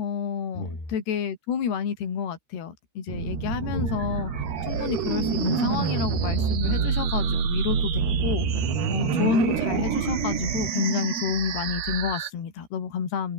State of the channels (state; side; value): late; right; 13 ms